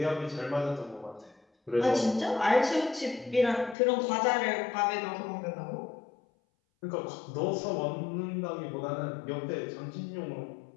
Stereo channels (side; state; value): right; drops out; at 3.8 s